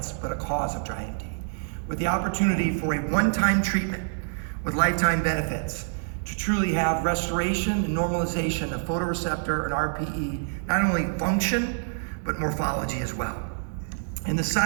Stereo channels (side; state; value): left; silent; digital silence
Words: but a cause of dry AMD. With the opportunity for a one-time treatment with lifetime benefits to truly have restoration and normalization of photoreceptor and RPE, not only function, but morphology as well. And the